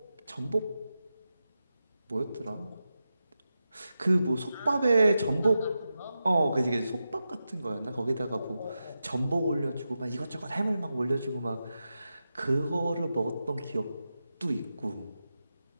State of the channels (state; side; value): inverted; both; correlation -0.90